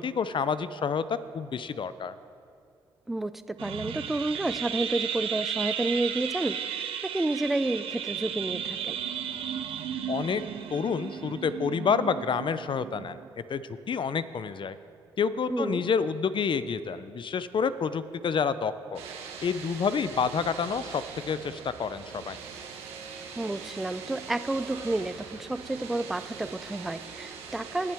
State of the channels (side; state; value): both; normal; correlation 0.60